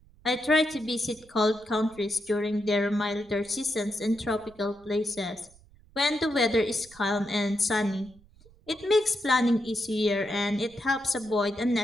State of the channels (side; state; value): right; noise; rumble, 26 dB below the sound